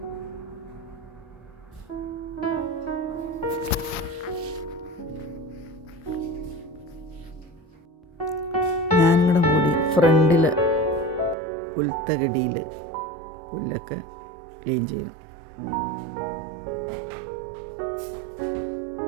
ഞാനിവിടെ കൂടി ഫ്രണ്ടിൽ പുൽത്തകടിയിൽ പുല്ലൊക്കെ ക്ലീൻ ചെയ്യും.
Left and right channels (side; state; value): left; drops out; at 11.4 s